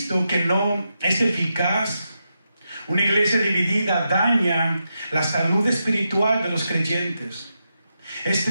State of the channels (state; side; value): inverted; both; correlation -0.86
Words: que no es eficaz. Una iglesia dividida daña la salud espiritual de los creyentes. Es